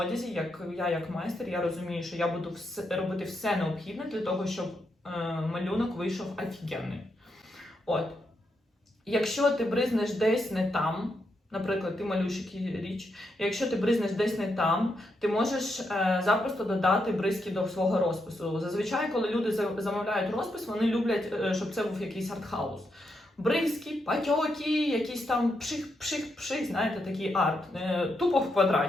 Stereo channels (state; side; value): normal; both; correlation 0.82